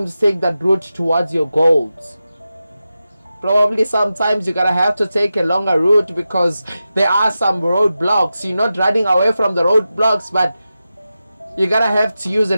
Take that route towards your goals. Probably sometimes you're gonna have to take a longer route because there are some roadblocks. You're not running away from the roadblocks, but you're gonna have to use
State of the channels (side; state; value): both; inverted; correlation -0.92